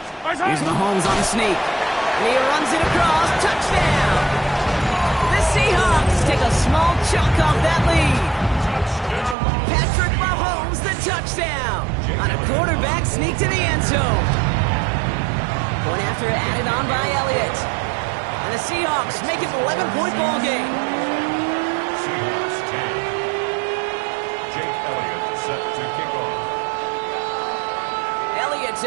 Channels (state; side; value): drops out; left; at 9.3 s